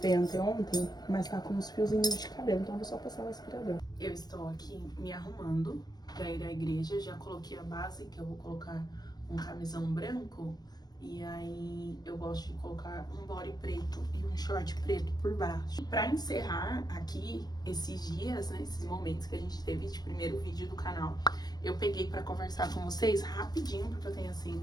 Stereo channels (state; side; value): late; right; 0.19 ms